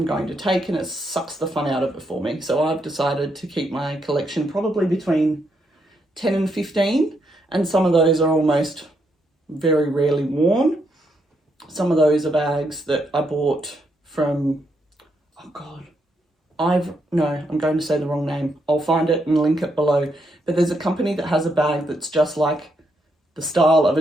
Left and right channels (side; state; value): both; normal; correlation 0.78